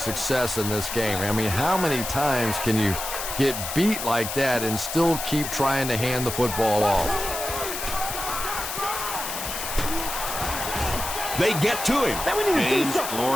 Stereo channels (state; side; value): noise; left; hiss, 5 dB below the sound